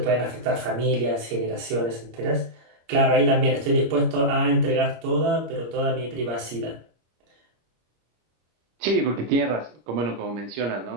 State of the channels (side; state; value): left; late; 25 ms